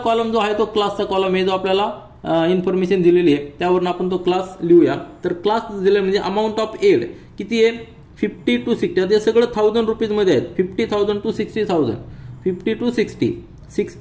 जो आहे तो क्लासचा कॉलम आहे, जो आपल्याला इन्फॉर्मेशन दिलेली आहे त्यावरून आपण तो क्लास लिहूया. तर क्लास दिले म्हणजे अमाऊंट ऑफ एड किती आहे, 50 to 60. ते सगळं 1000 रुपीज मध्ये आहेत. 50,000 to 60,000, 50 to 60,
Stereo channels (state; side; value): identical; both; correlation 1.00